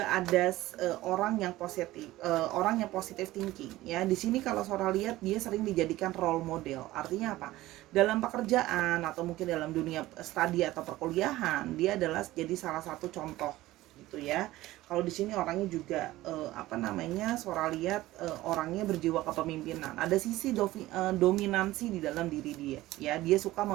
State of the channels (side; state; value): left; quieter; 16.9 dB